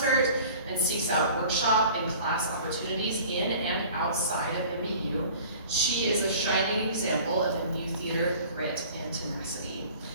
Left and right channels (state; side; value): inverted; both; correlation -0.45